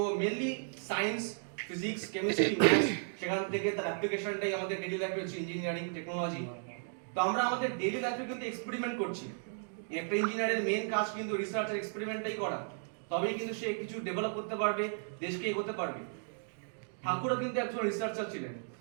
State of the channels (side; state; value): left; silent; digital silence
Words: mainly science, physics, chemistry, maths, সেখান থেকে তার অ্যাপ্লিকেশনটাই আমাদের ডেইলি লাইফে হচ্ছে ইঞ্জিনিয়ারিং টেকনোলজি। তো আমরা আমাদের ডেইলি লাইফে কিন্তু এক্সপেরিমেন্ট করছি। একটা ইঞ্জিনিয়ারের মেন কাজ কিন্তু রিসার্চ আর এক্সপেরিমেন্টটাই করা, তবেই কিন্তু সে কিছু ডেভেলপ করতে পারবে, দেশকে এগোতে পারবে। ঠাকুরও কিন্তু একজন রিসার্চার ছিলেন,